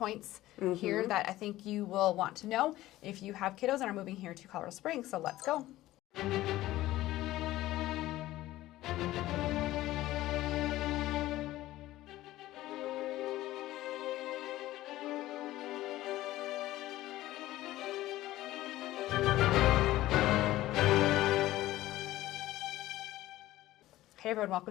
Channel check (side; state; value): right; quieter; 15.9 dB